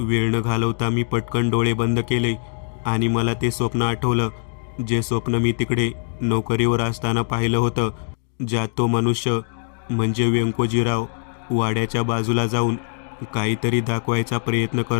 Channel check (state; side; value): silent; right; digital silence